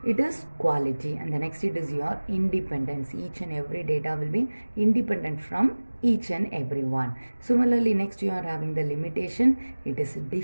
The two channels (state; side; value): inverted; both; correlation -1.00